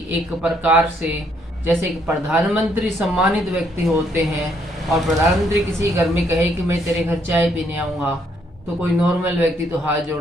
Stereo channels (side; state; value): both; normal; correlation 0.70